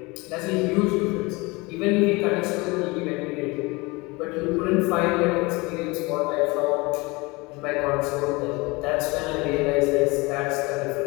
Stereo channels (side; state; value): right; quieter; 24.7 dB